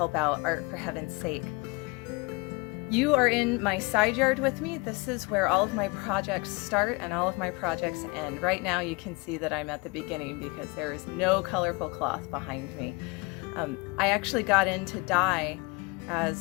out Art for Heaven's Sake. You are in my side yard with me. This is where all of my projects start and all of my projects end. Right now you can see that I'm at the beginning because there is no colorful cloth behind me. I actually got into dye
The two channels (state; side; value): quieter; right; 26.6 dB